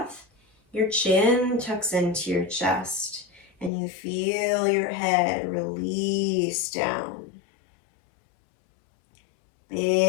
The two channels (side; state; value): right; drops out; at 3.7 s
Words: your chin tucks into your chest and you feel your head release down.